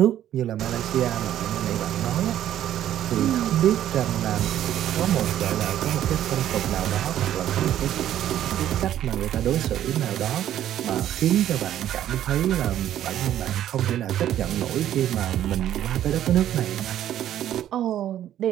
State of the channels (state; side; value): quieter; left; 11.6 dB